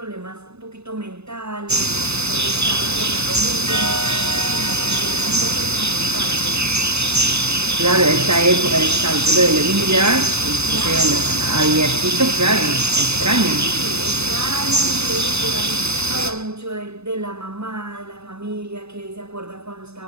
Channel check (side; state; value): left; late; 0.80 ms